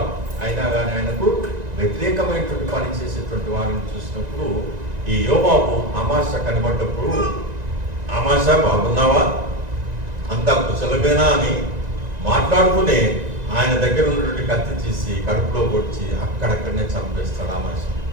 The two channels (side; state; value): left; late; 1.9 ms